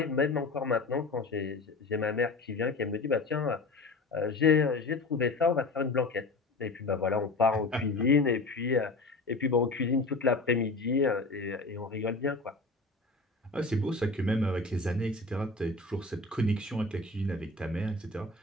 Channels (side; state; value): right; quieter; 3.3 dB